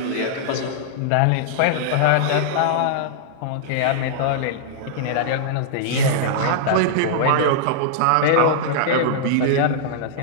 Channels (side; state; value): both; different; correlation -0.02